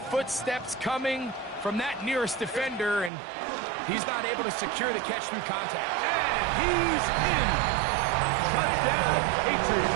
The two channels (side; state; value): left; drops out; at 3.1 s